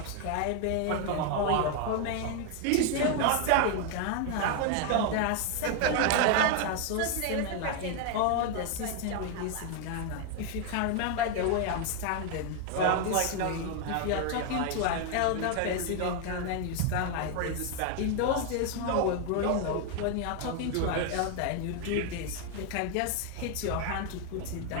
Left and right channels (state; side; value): different; both; correlation 0.01